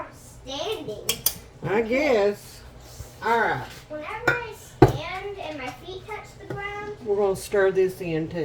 standing. I guess. All right. Whenever I stand and my feet touch the ground, We're going to stir this in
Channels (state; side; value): identical; both; correlation 1.00